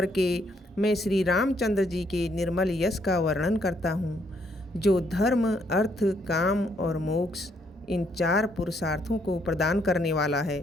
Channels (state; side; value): normal; both; correlation 0.71